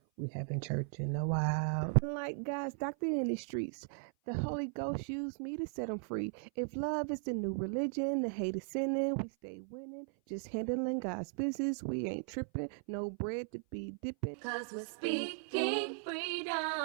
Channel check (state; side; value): silent; left; 53 dB below the other